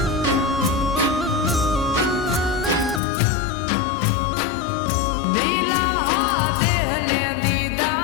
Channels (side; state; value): right; drops out; at 3.0 s